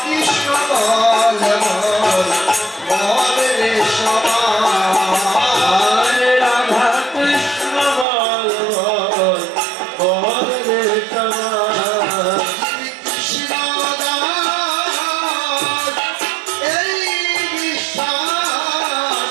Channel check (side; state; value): left; drops out; at 8.1 s